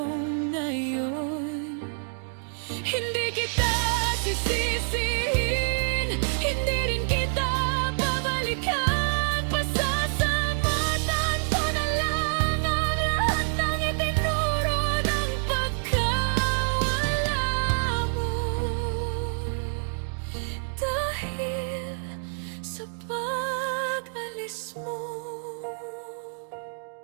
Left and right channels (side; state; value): left; silent; digital silence